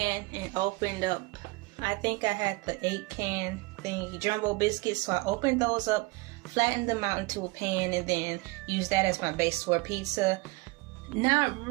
and opened up, I think I had the 8-can thing, jumbo biscuits. So I opened those up, flattened them out into a pan, and then used that as my base for pizza. Not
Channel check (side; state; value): left; quieter; 24.0 dB